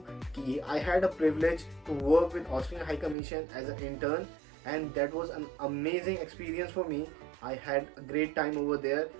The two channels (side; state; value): left; drops out; at 3.2 s